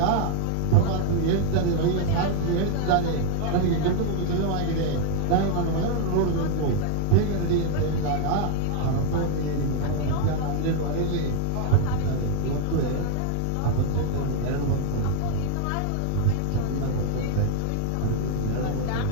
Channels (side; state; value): both; different; correlation 0.00